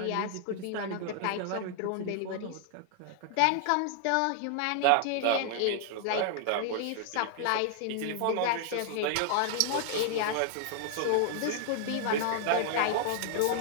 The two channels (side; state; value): both; different; correlation 0.00